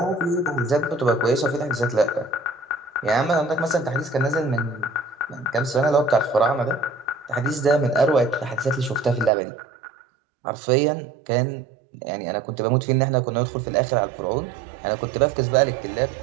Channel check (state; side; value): drops out; left; at 9.3 s